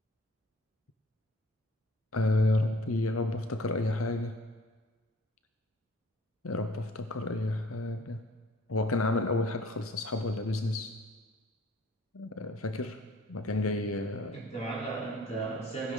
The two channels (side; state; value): both; normal; correlation 0.53